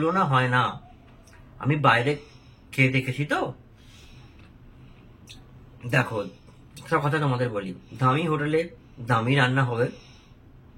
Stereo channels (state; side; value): identical; both; correlation 1.00